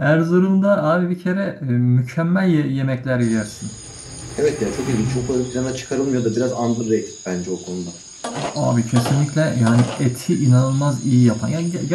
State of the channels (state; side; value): identical; both; correlation 1.00